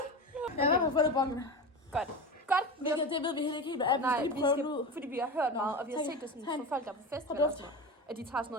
Godt. Det ved vi heller ikke helt, hvad er. Nej, vi skal ud, fordi vi har hørt meget, og vi har set det sådan for folk, der er på festival. At de tager sådan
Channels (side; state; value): both; normal; correlation 0.25